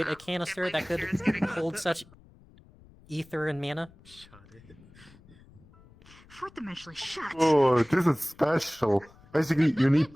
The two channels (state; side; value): noise; left; rumble, 25 dB below the sound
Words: a canister that could hold such ether and mana? Shut it. Fourth dimensionally shut. Oh, this is special. Basically, you need